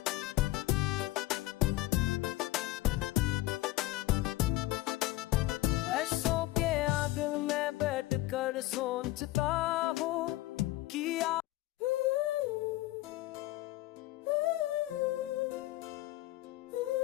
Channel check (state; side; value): quieter; right; 17.2 dB